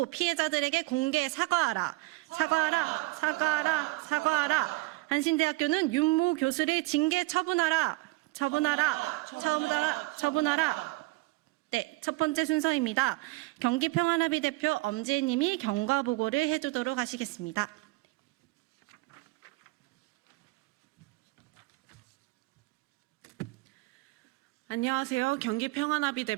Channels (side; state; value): left; quieter; 22.2 dB